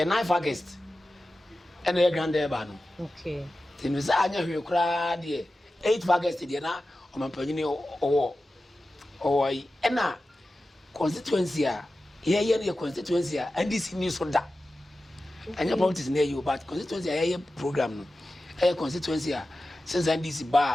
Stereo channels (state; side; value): normal; both; correlation 0.94